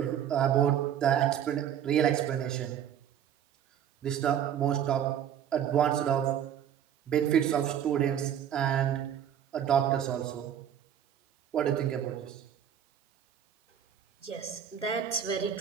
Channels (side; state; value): left; quieter; 9.6 dB